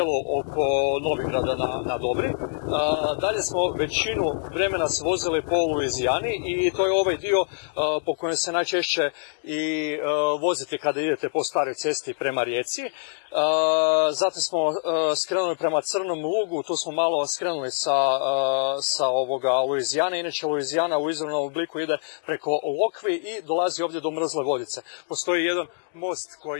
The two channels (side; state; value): right; silent; digital silence